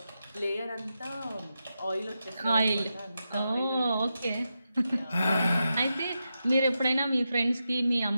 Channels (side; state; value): both; inverted; correlation -0.88